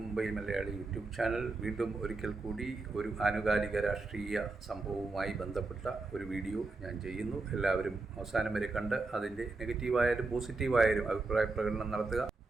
Mumbai Malayali YouTube channel. വീണ്ടും ഒരിക്കൽ കൂടി ഒരു ആനുകാലിക രാഷ്ട്രീയ സംഭവവുമായി ബന്ധപ്പെട്ട ഒരു വീഡിയോ ഞാൻ ചെയ്യുന്നു. എല്ലാവരും അവസാനം വരെ കണ്ട് അതിൻ്റെ നെഗറ്റീവായാലും പോസിറ്റീവായാലും അഭിപ്രായ പ്രകടനം നടത്തുക.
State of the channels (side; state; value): left; quieter; 3.5 dB